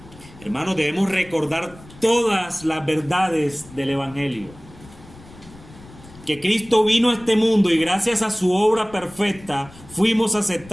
Hermanos, debemos recordar todas las verdades del Evangelio. Que Cristo vino a este mundo y gracias a su obra perfecta fuimos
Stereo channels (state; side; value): noise; left; rumble, 21 dB below the sound